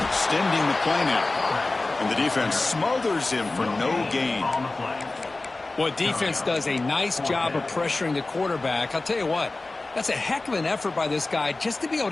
Extending the play now. And the defense smothers him for no gain. Well, defense does a nice job of pressuring the quarterback. I'll tell you what, that's a heck of an effort by this guy just to be able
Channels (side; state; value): right; quieter; 3.2 dB